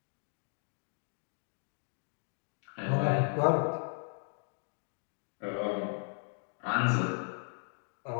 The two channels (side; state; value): right; silent; 54 dB below the other